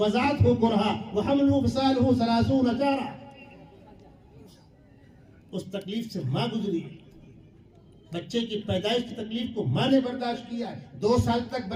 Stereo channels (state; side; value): identical; both; correlation 1.00